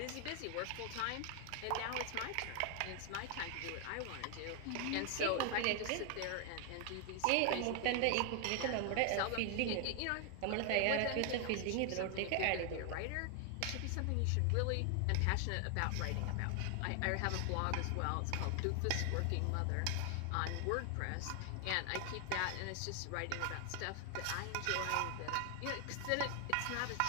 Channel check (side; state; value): both; different; correlation 0.00